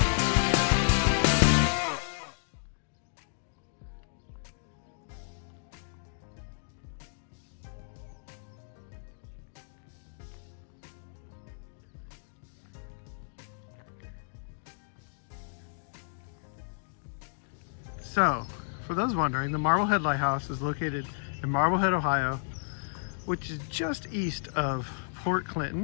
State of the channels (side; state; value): right; silent; digital silence